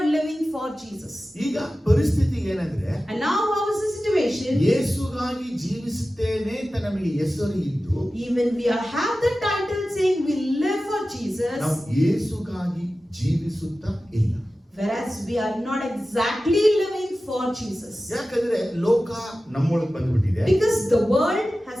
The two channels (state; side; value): normal; both; correlation 0.95